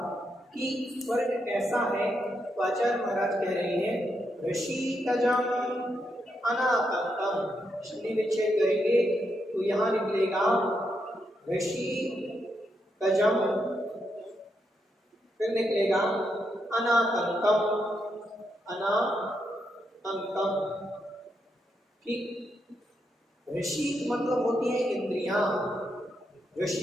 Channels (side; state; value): both; normal; correlation 0.81